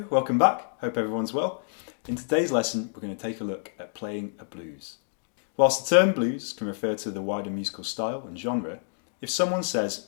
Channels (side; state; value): right; silent; digital silence